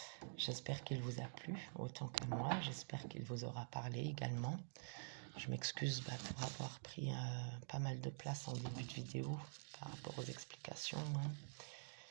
J'espère qu'il vous a plu autant qu'à moi. J'espère qu'il vous aura parlé également. Je m'excuse pour avoir pris pas mal de place en début de vidéo par rapport aux explications.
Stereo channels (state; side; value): silent; left; digital silence